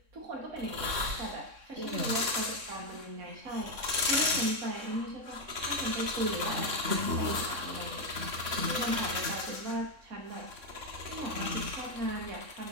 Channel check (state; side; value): late; left; 3.6 ms